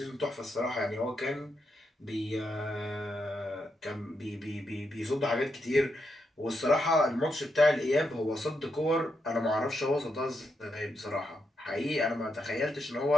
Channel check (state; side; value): normal; both; correlation 0.83